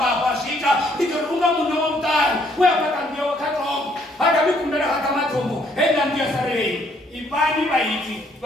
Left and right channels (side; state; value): both; normal; correlation 0.67